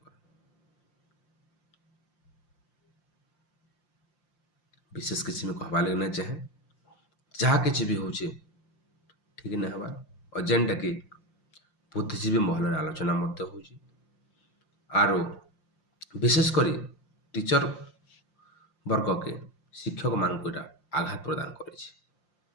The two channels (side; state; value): right; late; 5.7 ms